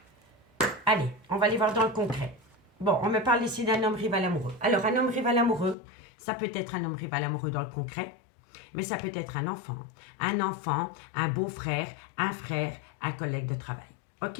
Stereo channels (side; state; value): right; drops out; at 5.8 s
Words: Allez, on va aller voir dans le concret. Bon, on me parle ici d'un homme rival amoureux. Alors, un homme rival amoureux, ça peut être un homme rival amoureux dans le concret, mais ça peut être un enfant, un beau-frère, un collègue de travail.